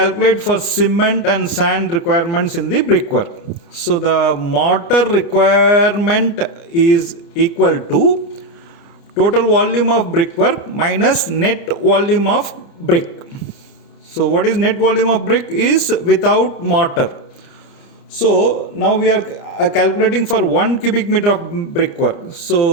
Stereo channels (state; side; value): late; right; 30 ms